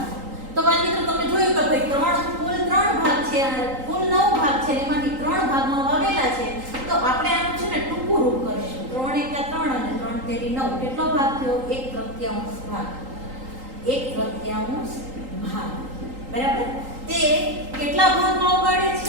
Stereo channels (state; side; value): late; left; 3.8 ms